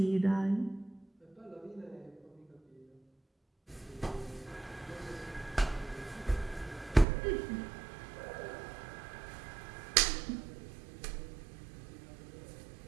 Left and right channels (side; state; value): left; drops out; at 7.1 s